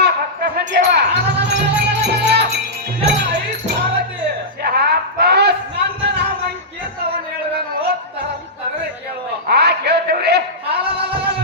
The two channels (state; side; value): normal; both; correlation -0.13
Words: ಭಕ್ತ ಸಂಜೀವ ನನ್ನ ನಾಮಂಕೇತವನ್ನು ಹೇಳುವೆನು ತರವೇ ಕೇಳುವ ಕೇಳ್ತೇವ್ರಿ